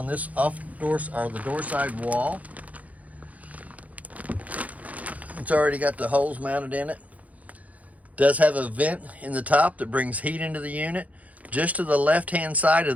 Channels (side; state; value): left; late; 0.071 ms